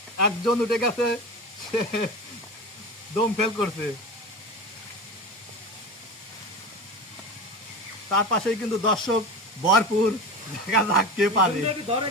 একজন উঠে গেছে সে দম ফেল করছে তার পাশেই কিন্তু দর্শক ভরপুর দেখা যাক কে পারে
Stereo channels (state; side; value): normal; both; correlation 0.27